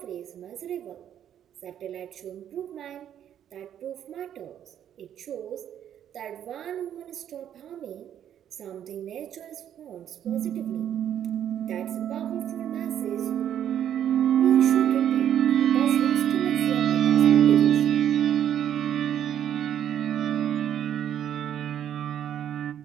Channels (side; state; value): left; quieter; 10.1 dB